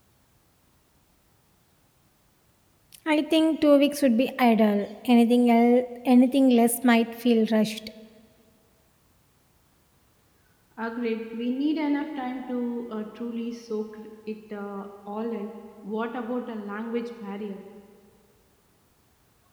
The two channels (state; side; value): identical; both; correlation 1.00